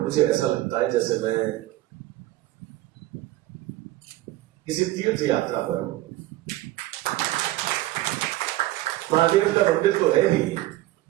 मुझे ऐसा लगता है जैसे मैं किसी तीर्थ यात्रा पर हूं। महादेव का मंदिर तो है ही,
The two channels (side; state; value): left; quieter; 16.5 dB